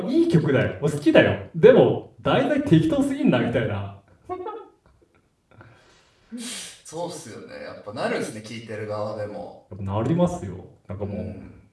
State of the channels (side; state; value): both; identical; correlation 1.00